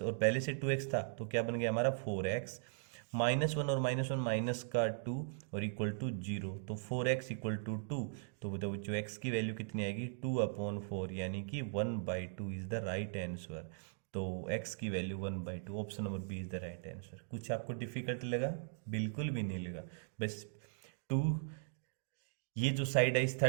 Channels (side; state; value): left; silent; digital silence